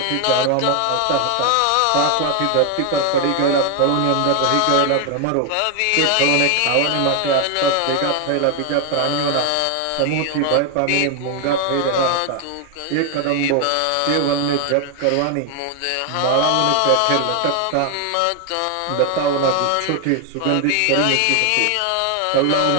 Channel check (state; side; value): different; both; correlation 0.00